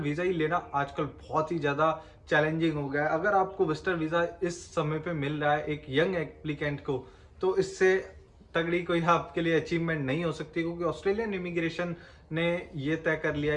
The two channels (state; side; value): identical; both; correlation 1.00